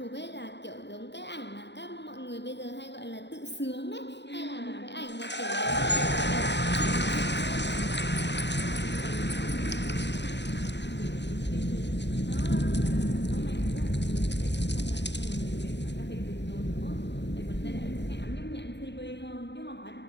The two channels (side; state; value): right; late; 0.51 ms